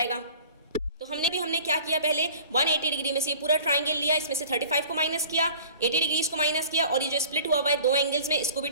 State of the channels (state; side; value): inverted; both; correlation -0.47